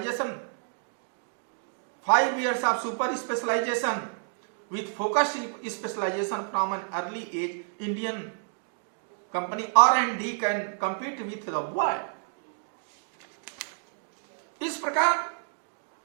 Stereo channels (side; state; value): left; silent; digital silence